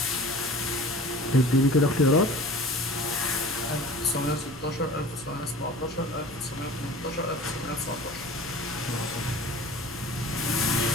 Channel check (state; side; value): noise; left; hum, 22 dB below the sound